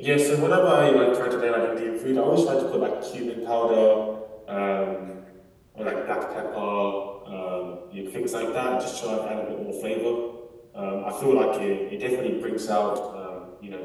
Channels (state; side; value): identical; both; correlation 1.00